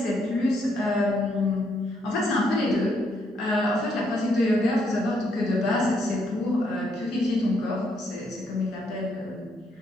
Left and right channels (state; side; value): normal; both; correlation 0.74